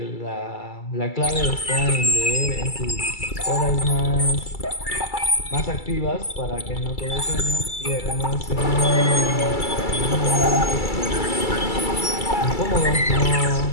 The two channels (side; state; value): right; late; 2.3 ms